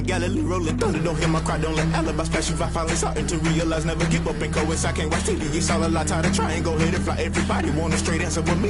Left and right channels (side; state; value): both; identical; correlation 1.00